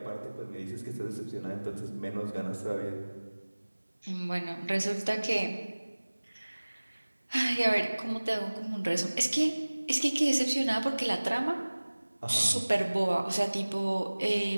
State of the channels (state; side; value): inverted; both; correlation -1.00